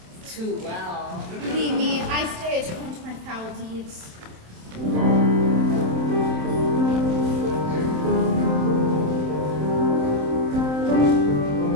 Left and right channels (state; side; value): late; left; 27 ms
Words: too well. Believe me, I stay attuned to my foul deeds.